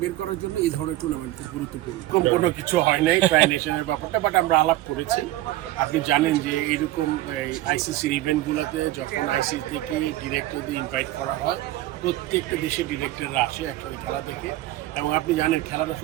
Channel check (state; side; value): quieter; left; 15.8 dB